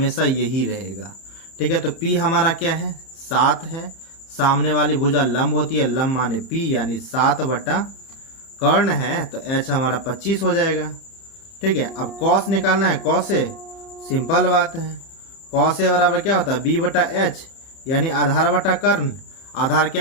यही रहेगा, ठीक है। तो पी हमारा क्या है, 7 है, सामने वाली भुजा लंब होती है, लंब माने पी यानी 7 बटा कर्ण है, तो एच हमारा 25 हो जाएगा, ठीक है। अब कॉस निकालना है, कॉस ए सिंपल बात है, कॉस ए बराबर क्या होता है, बी बटा एच यानी आधार बटा कर्ण। आधार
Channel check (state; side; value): late; right; 31 ms